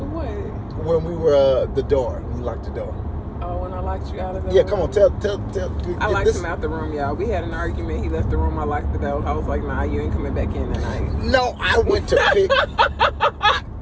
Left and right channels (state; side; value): identical; both; correlation 1.00